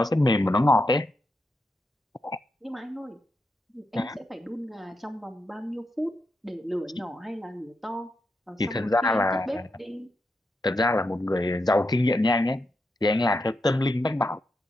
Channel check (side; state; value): both; normal; correlation 0.84